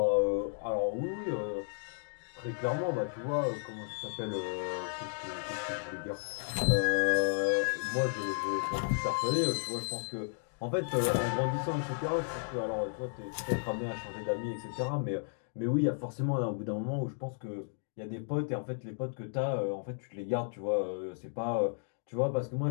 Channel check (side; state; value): right; silent; digital silence